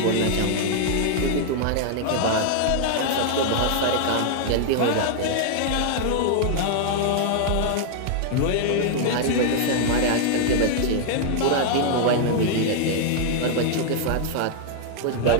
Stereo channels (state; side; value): different; both; correlation 0.00